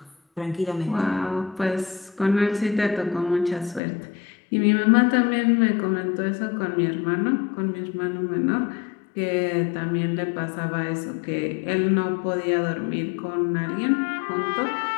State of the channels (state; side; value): drops out; right; at 3.8 s